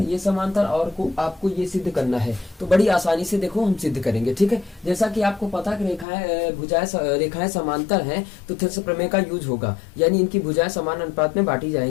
समांतर और आपको ये सिद्ध करना है। तो बड़ी आसानी से देखो हम सिद्ध करेंगे। ठीक है, जैसा कि आपको पता कि रेखाएं समांतर हैं तो थेल्स प्रमेय का यूज होगा, यानी इनकी भुजाएं समान अनुपात में बांटी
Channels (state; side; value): drops out; right; at 6.1 s